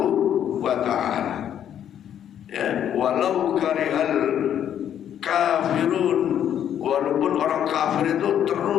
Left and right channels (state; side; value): quieter; right; 9.8 dB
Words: wa ta'ala. Ya, walau karihal kafirun, walaupun orang kafir itu